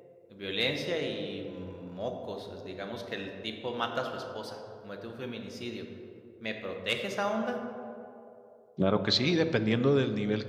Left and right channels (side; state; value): both; identical; correlation 1.00